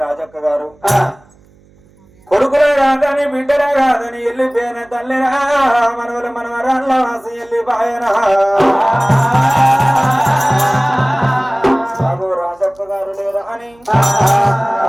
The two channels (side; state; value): right; noise; hum, 30 dB below the sound